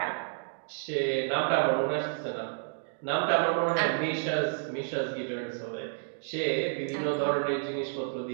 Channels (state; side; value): silent; left; digital silence